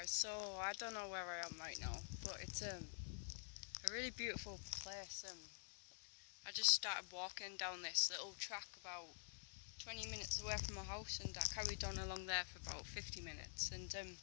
so I don't know where I am right now, but it's a really beautiful place. I just started walking down this little track about 20 minutes away from my house, and I carried on along there for about 50 minutes, and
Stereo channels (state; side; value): silent; right; digital silence